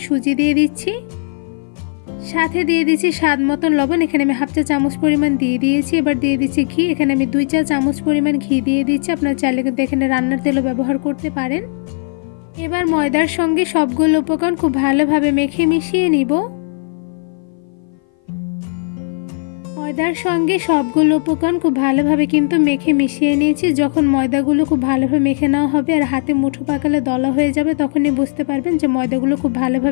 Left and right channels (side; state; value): right; silent; 57 dB below the other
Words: সুজি দিয়ে দিচ্ছি। সাথে দিয়ে দিচ্ছি স্বাদ মতন লবণ। এখানে আমি হাফ চা চামচ পরিমাণ দিয়ে দিয়েছি। এবার দিয়ে দিচ্ছি ঘি। এখানে আমি 2 চা চামচ পরিমাণ ঘি দিয়ে দিচ্ছি। আপনারা চাইলে কিন্তু এখানে রান্নার তেলও ব্যবহার করতে পারেন। এবার ময়দার সঙ্গে সবগুলো উপকরণ খুব ভালোভাবে মেখে মিশিয়ে নিব। ময়দার সঙ্গে সবগুলো উপকরণ খুব ভালোভাবে কিন্তু মেখে মিশিয়ে নিয়েছি। যখন ময়দাগুলো খুব ভালোভাবে মেখে নেওয়া হবে আর হাতে মুঠো পাকালে দলা হয়ে যাবে, তখনই বুঝতে পারবেন যে ময়দাগুলো খুব